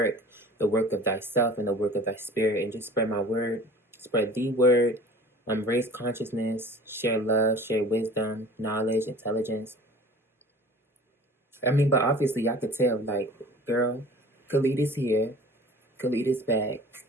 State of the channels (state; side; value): normal; both; correlation 0.44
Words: the work of thyself and the work of thy spirit, and just spread my word, spread the word, raise consciousness, share love, share wisdom, knowledge, intelligence. I mean, but obviously, I could tell, like, girl, Khalid is here. Khalid is back.